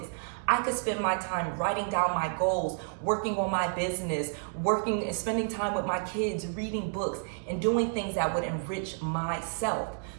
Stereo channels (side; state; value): left; silent; 58 dB below the other